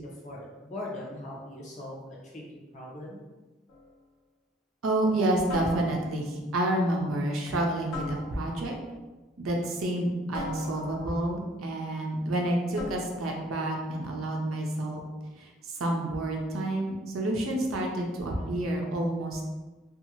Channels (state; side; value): normal; both; correlation 0.58